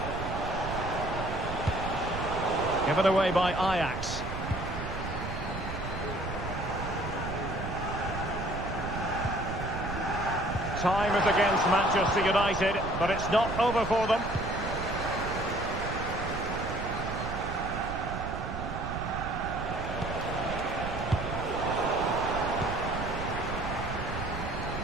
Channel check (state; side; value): noise; right; rumble, 6 dB below the sound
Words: Given away by Ajax. Time is against Manchester United, but it's not over for them.